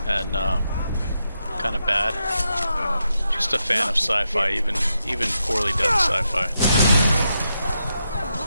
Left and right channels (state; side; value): inverted; both; correlation -0.84